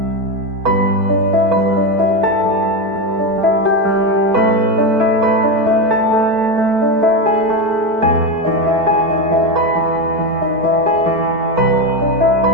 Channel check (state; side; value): late; left; 4.4 ms